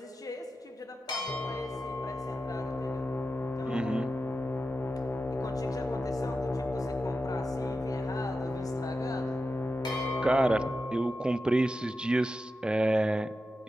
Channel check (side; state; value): both; normal; correlation 0.91